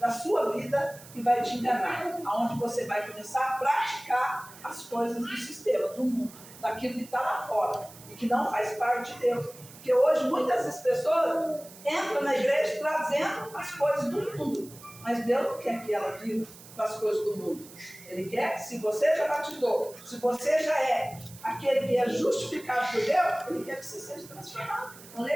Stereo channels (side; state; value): right; noise; hiss, 19 dB below the sound